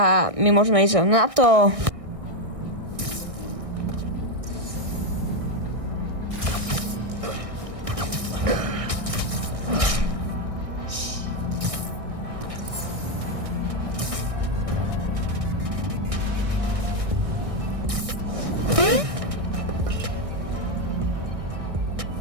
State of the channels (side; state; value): left; late; 1.6 ms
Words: my môžeme ísť na to.